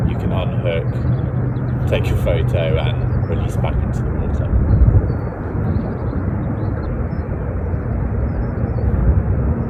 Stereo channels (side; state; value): both; identical; correlation 1.00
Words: you can unhook, take your photo and release back into the water.